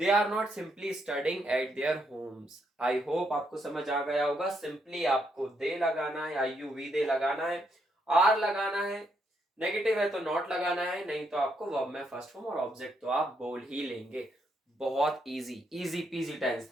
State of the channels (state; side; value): normal; both; correlation 0.76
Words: are not simply studying at their homes. I hope आपको समझ आ गया होगा। सिंपली आपको दे लगाना है, आई यू वी दे लगाना है, आर लगाना है, नेगेटिव है तो नॉट लगाना है, नहीं तो आपको वर्ब में फर्स्ट फॉर्म और ऑब्जेक्ट तो आप बोल ही लेंगे। बहुत इजी इजी पीजी टेंस